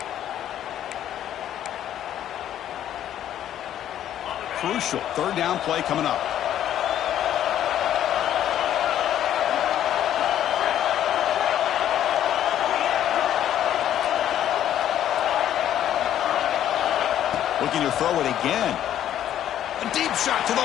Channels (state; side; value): quieter; right; 11.1 dB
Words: Crucial third down play coming up. Looking to throw it again. A deep shot to the